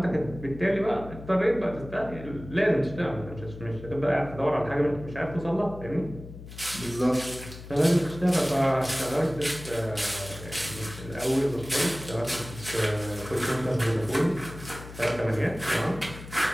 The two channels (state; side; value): noise; left; hum, 14 dB below the sound